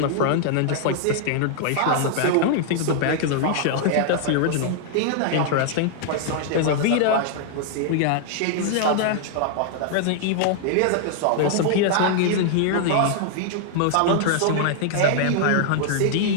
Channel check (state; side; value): different; both; correlation 0.00